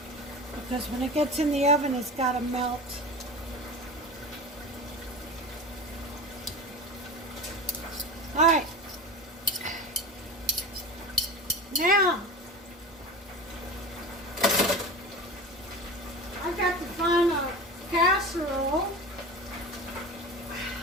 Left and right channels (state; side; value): normal; both; correlation 0.30